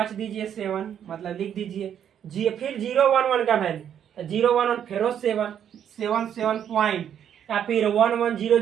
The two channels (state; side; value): quieter; left; 9.2 dB